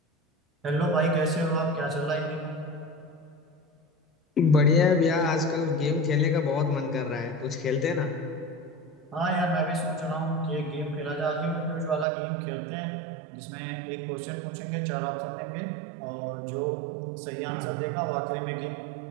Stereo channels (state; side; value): drops out; left; at 12.1 s